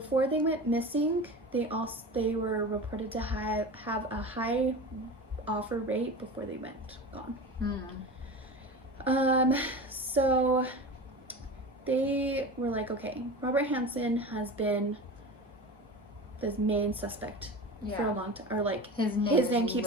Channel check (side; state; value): both; normal; correlation 0.31